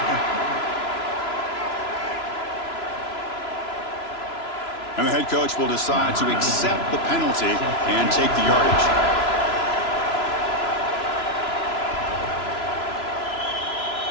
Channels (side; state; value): right; late; 3.0 ms